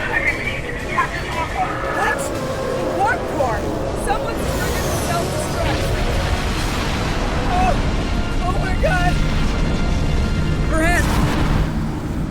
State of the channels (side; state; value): both; identical; correlation 1.00